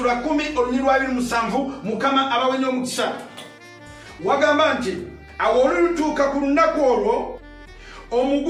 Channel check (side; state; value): both; identical; correlation 1.00